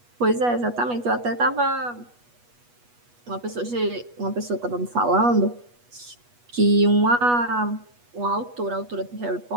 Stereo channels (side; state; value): left; late; 8.3 ms